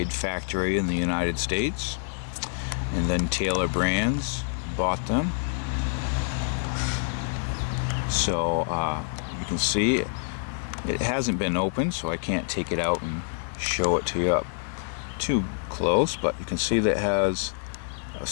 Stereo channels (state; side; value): silent; right; digital silence